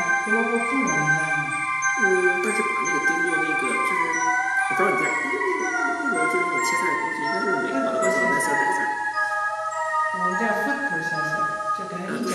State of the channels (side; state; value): both; identical; correlation 1.00